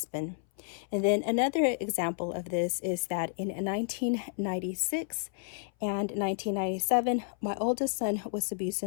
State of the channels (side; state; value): right; silent; 57 dB below the other